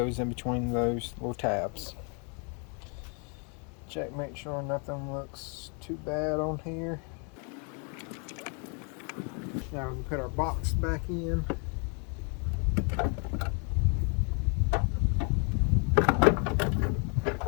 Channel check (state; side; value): quieter; right; 37.0 dB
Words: in between those little tabs. Check, make sure nothing looks too bad on here. Now we can put our box back in.